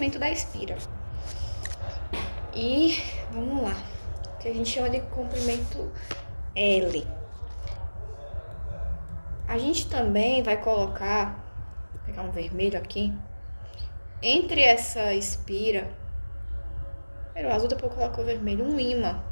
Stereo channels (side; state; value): both; inverted; correlation -1.00